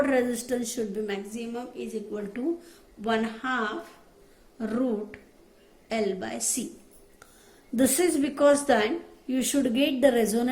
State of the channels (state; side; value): identical; both; correlation 1.00